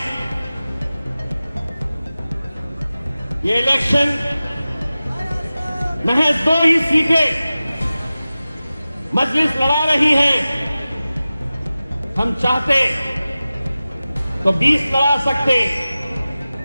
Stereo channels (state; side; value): inverted; both; correlation -0.96